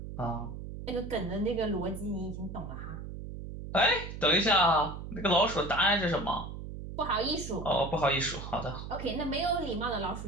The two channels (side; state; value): right; noise; hum, 9 dB below the sound